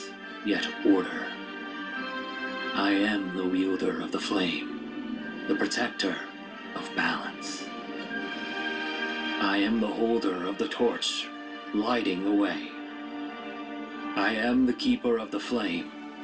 yet order. I am the wielder of the flame, the protector of balance. I am the holder of the torch, lighting the way. I am the keeper of the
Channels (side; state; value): both; identical; correlation 1.00